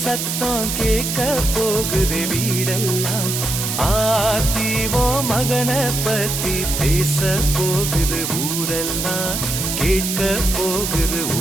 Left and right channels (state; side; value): noise; right; hiss, 2 dB below the sound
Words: சத்தம் கேட்க போகுது வீடெல்லாம். ஆத்திவோ மகனை பத்தி பேச போகுது ஊரெல்லாம், கேட்க போகுது